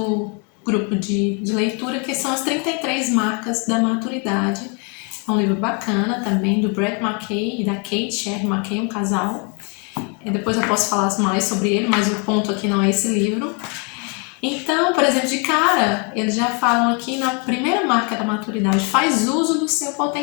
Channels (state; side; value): quieter; right; 34.6 dB